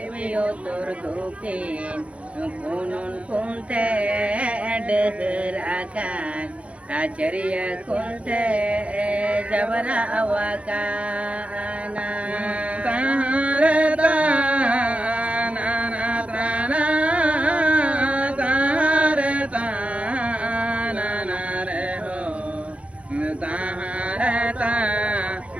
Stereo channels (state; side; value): late; left; 0.063 ms